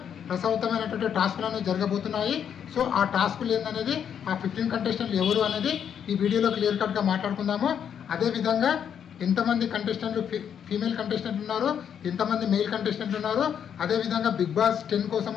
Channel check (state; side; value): quieter; right; 8.4 dB